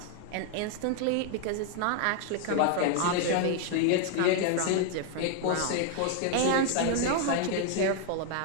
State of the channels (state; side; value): different; both; correlation 0.00